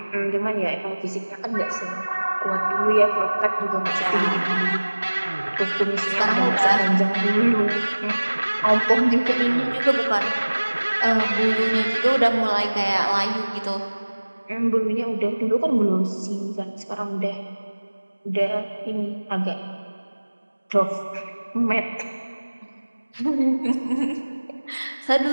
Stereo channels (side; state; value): both; inverted; correlation -1.00